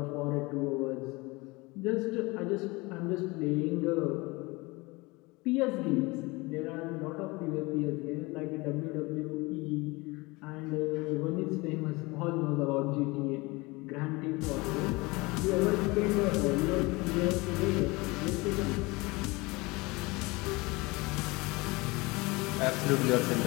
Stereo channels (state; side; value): quieter; right; 24.2 dB